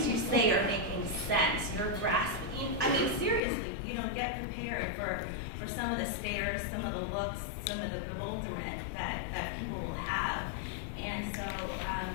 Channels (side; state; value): right; drops out; at 3.4 s